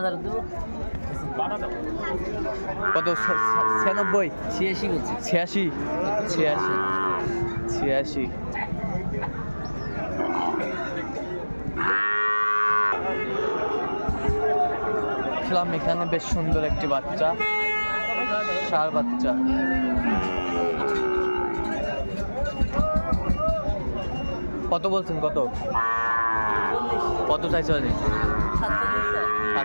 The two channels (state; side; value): inverted; both; correlation -1.00